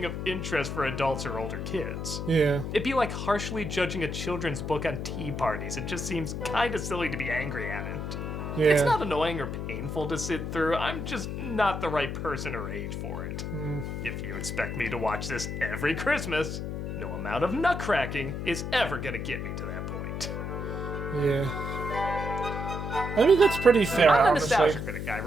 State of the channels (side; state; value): left; noise; hum, 4 dB below the sound